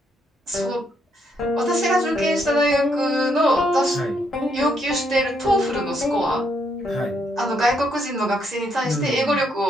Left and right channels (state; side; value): normal; both; correlation 0.74